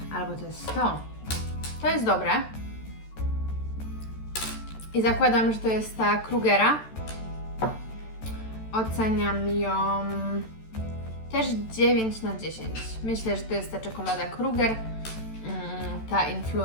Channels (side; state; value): right; late; 14 ms